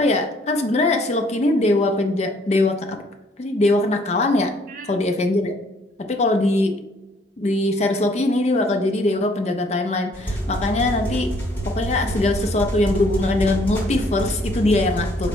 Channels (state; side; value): normal; both; correlation 0.63